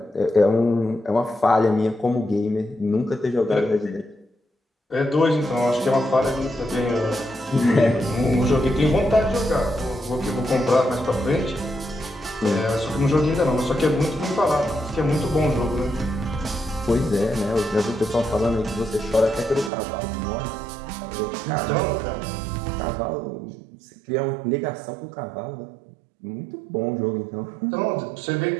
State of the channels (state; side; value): drops out; left; at 19.7 s